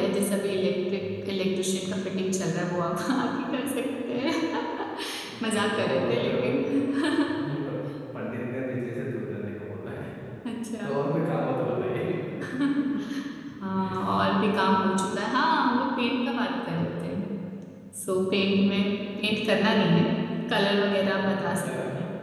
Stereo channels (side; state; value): both; identical; correlation 1.00